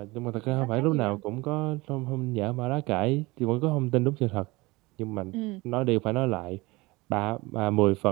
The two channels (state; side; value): quieter; left; 22.6 dB